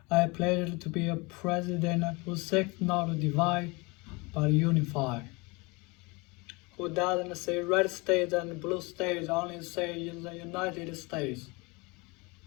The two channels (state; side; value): quieter; right; 26.7 dB